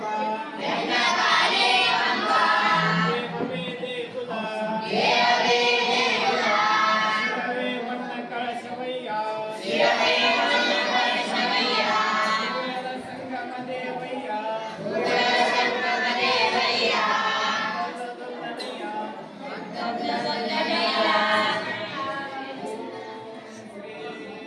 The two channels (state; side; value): identical; both; correlation 1.00